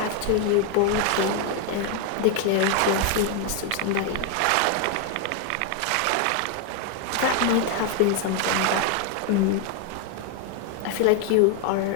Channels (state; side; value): different; both; correlation 0.01